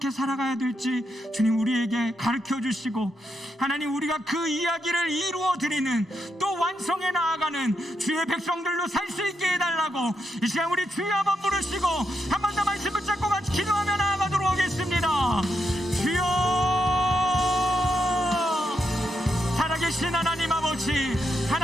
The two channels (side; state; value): both; normal; correlation 0.82